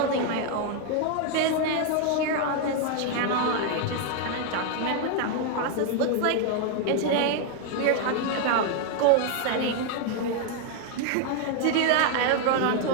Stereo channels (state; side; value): different; both; correlation 0.00